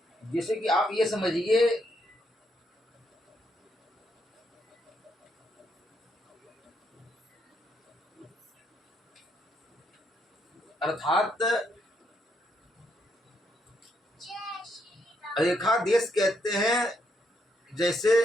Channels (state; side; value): normal; both; correlation 0.76